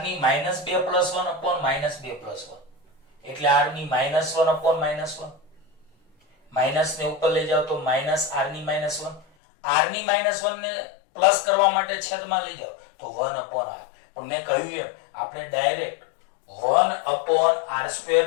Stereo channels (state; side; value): drops out; right; at 9.2 s